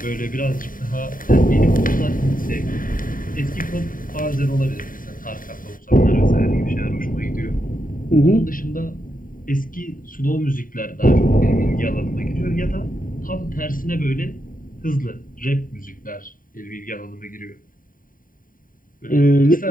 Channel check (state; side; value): late; right; 0.40 ms